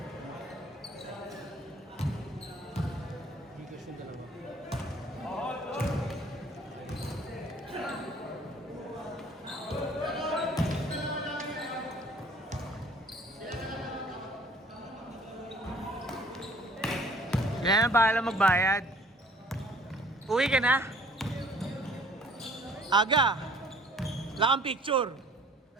Yan, bahala magbayad. Uwi ka na? Aga. Wala kang picture.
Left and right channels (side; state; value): both; normal; correlation 0.55